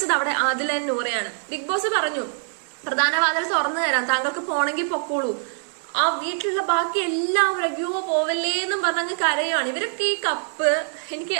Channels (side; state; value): left; silent; 63 dB below the other